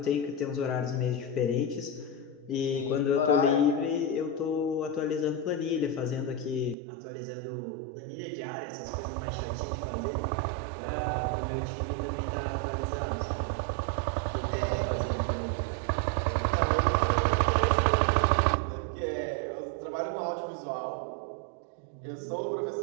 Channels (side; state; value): left; drops out; at 6.8 s